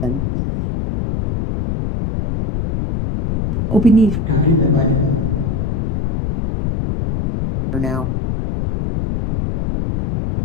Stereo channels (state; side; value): noise; left; rumble, 2 dB below the sound